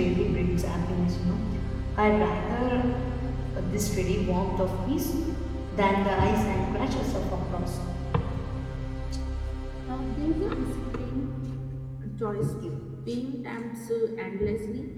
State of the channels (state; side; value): identical; both; correlation 1.00